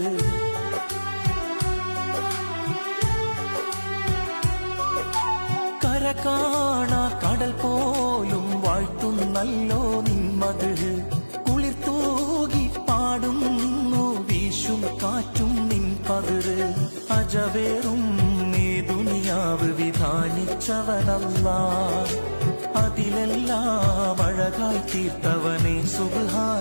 കര കാണാ കടൽ പോലും വാഴ്ത്തുന്നല്ലോ നിന്മത് കുളിർത്തൂകി പാടുന്നു വീശും കാറ്റും നിൻ പതിര് അജവേറും നീ ദുനിയാവ് വിധാനിച്ചവനല്ലാഹ് അതിലെല്ലാം അഴകായി തീർത്തവനെ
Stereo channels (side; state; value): both; inverted; correlation -1.00